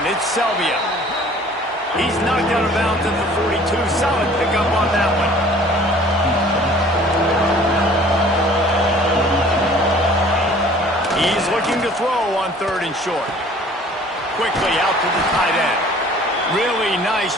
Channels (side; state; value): both; normal; correlation 0.51